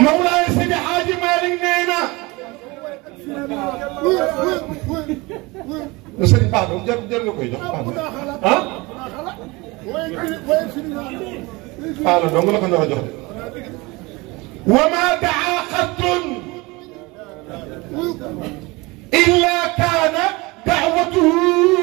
Mawlaay Seydi Hadji Malick nee na sëriñ baax na jar nga koy jox baax na ah la dong la ko nar a jox de wa ma daa xattun illa kaana daawatuhu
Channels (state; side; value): quieter; left; 24.0 dB